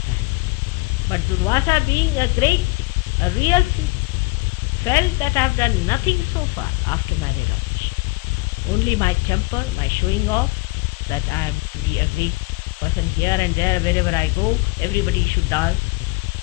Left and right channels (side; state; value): right; quieter; 23.3 dB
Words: has? But Durvasa, being a real thief, felt that I have done nothing so far after my realization. Only my temper, my showing off, that I am to be a great person here and there, wherever I go, everybody should dance